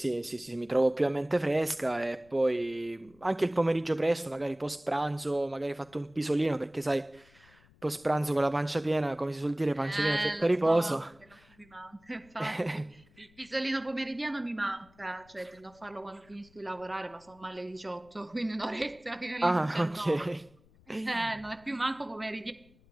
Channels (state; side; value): noise; left; rumble, 29 dB below the sound